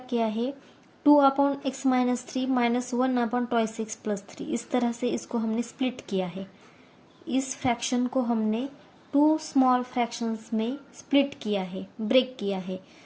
किया है, 2 upon x minus 3 minus 1 upon twice x plus 3, इस तरह से इसको हमने स्प्लिट किया है। इस फ्रैक्शन को हमने 2 स्मॉल फ्रैक्शंस में स्प्लिट किया है, ब्रेक किया है,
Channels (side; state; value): both; identical; correlation 1.00